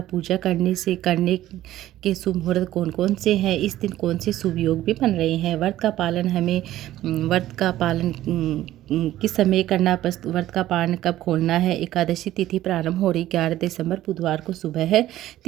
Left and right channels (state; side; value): quieter; left; 14.1 dB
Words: पूजा करने के शुभ मुहूर्त कौन कौन से हैं, इस दिन कौन से शुभ योग भी बन रहे हैं। व्रत का पालन किस समय करना, व्रत का पालन कब खोलना है। एकादशी तिथि प्रारंभ हो रही 11 दिसंबर बुधवार को सुबह है